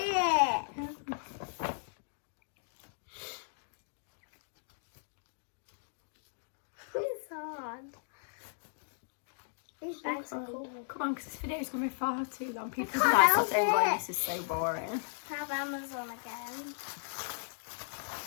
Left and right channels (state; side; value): silent; right; digital silence